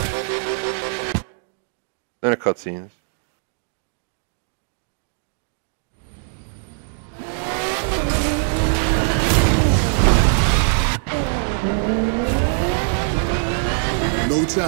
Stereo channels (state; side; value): silent; left; 65 dB below the other